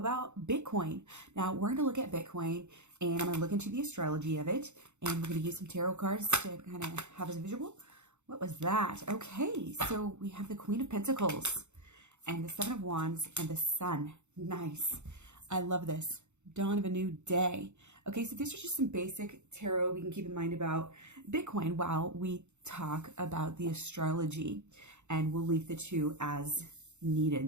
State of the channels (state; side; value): late; left; 0.83 ms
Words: Bitcoin. Now we're going to look at Bitcoin and I'm going to look into the astrology of it, and we're going to use some tarot cards to kind of have as a visual. What was that? Okay, so we have the Queen of Pentacles and the Seven of Wands and the Sun. Nice. I love this. Dawn of a new day. Okay, so these are just some basic tarot we can keep in mind about Bitcoin while we talk about the astrology, and we'll leave the two as